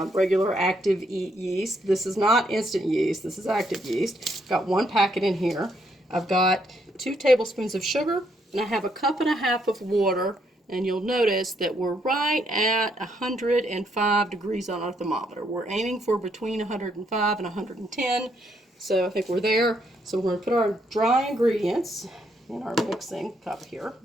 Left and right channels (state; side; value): normal; both; correlation 0.74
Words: regular active yeast. This is not instant yeast, this is active yeast. I've got one packet in here. I've got 2 tablespoons of sugar, and I have a cup and a half of water, and you'll notice that we're right at 105 degrees on our thermometer. We're aiming for between 105 and 110. So I think we're there. So we're going to put our dry ingredients in our mixing cup here.